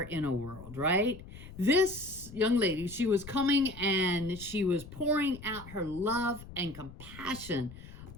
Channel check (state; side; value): noise; left; rumble, 15 dB below the sound